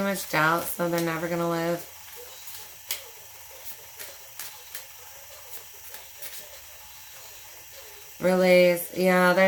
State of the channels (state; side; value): identical; both; correlation 1.00